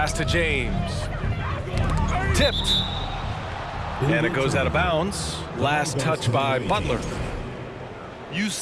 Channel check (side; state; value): both; identical; correlation 1.00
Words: to James. Tipped. And it goes out of bounds. Last touch by Butler. You